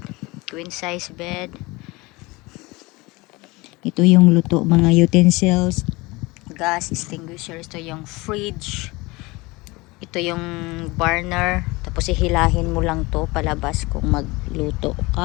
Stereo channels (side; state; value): right; quieter; 23.2 dB